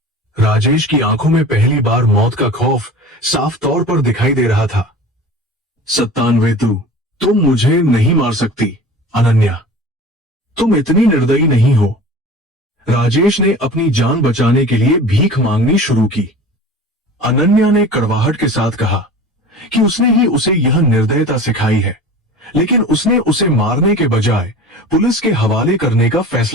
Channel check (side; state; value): both; normal; correlation 0.38